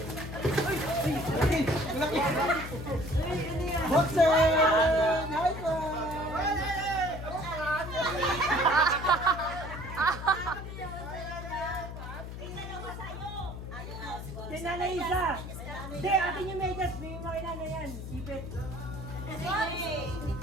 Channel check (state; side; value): noise; left; hum, 9 dB below the sound